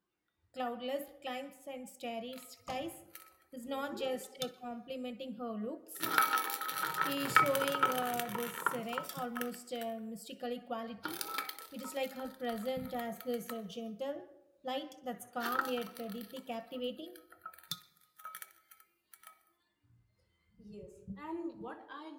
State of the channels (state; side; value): identical; both; correlation 1.00